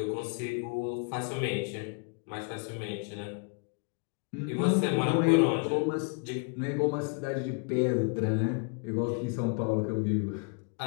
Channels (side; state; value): right; quieter; 36.5 dB